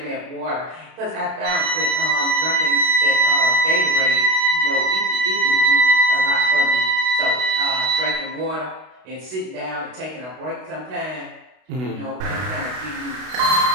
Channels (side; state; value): left; late; 32 ms